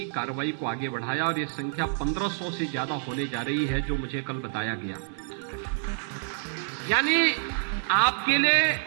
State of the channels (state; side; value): silent; left; digital silence